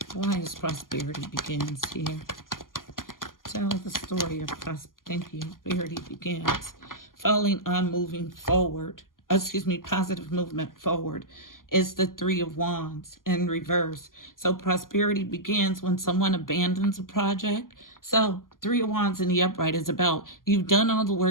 Why is prosperity begins here? Tell the story of prosperity begins. Falling on moving forward, positive movement forward is the Three of Wands in reverse. So prosperity begins when someone abandons a project. So Three of Wands in the upright is about you've done all the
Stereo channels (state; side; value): late; right; 0.91 ms